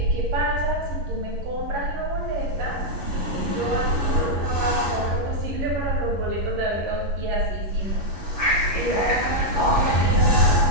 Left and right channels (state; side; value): late; left; 11 ms